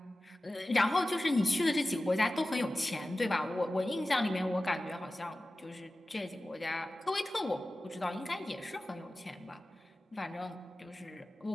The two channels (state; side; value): normal; both; correlation 0.96